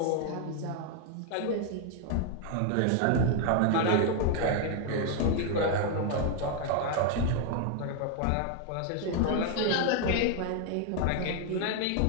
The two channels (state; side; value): different; both; correlation 0.00